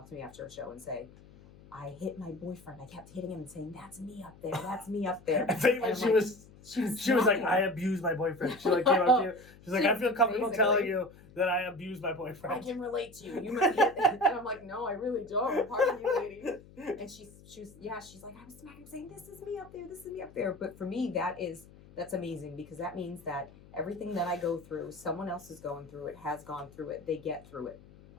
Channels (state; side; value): noise; left; hum, 22 dB below the sound